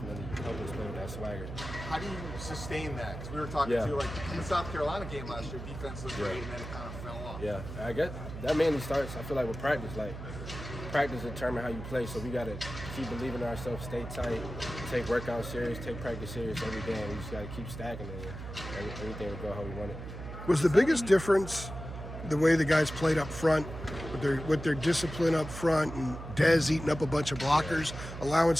helped us play with that swagger. How do you sustain that? Because we were talking to you in the South Carolina game last year, defense was great and then it kind of fell off. Yeah, I guess that mainly starts, I feel like, with practice. Practice determine how you play, so we got to keep believing in ourselves, stay tight, take workout serious, take practice serious every day, and we just got to keep stacking it, and everything will go how we want it. Was the biggest difference the way the guys played up front, with their discipline up front, and Dez eating up a bunch of blockers, allowing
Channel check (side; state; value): right; noise; hum, 9 dB below the sound